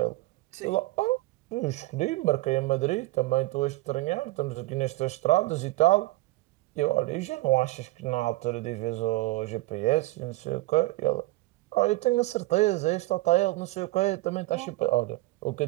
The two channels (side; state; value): left; quieter; 19.8 dB